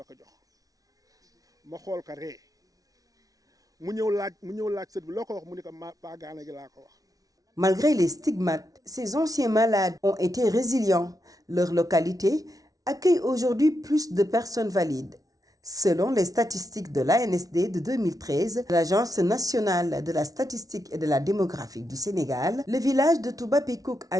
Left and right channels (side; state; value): left; late; 0.18 ms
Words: ko jox ma xool ko ree mu ñëw laaj sët bi loo ko wax mu ni ko bàyyi gaana gi laa ko wax. Malgré les stigmates, ces anciens malades ont été résilients. Leur localité accueille aujourd'hui plus de personnes valides. Selon les statistiques de l'ANSD de 2013, l'Agence nationale de la statistique et de la démographie du Sénégal, le village de Touba Pekouk